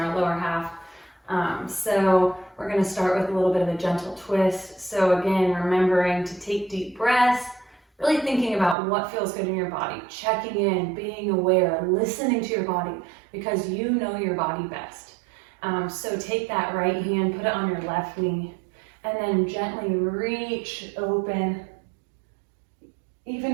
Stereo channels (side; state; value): left; drops out; at 8.8 s